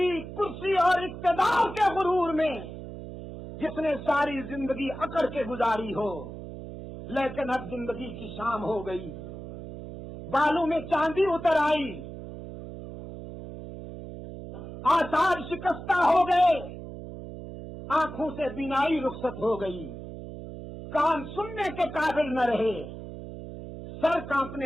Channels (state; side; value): noise; right; hum, 11 dB below the sound